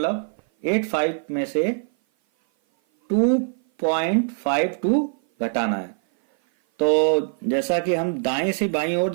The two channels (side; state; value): left; silent; 56 dB below the other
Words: में से 2.52 घटाना है। तो जैसा कि हम दाएं से बाईं ओर